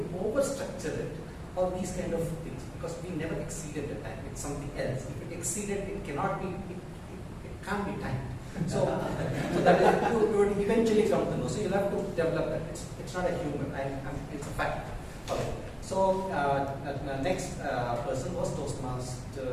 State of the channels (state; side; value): identical; both; correlation 1.00